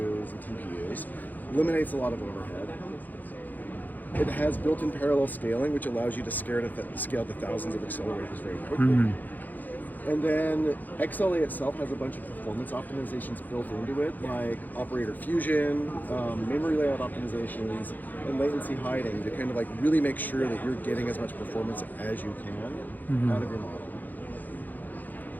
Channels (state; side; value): late; right; 0.084 ms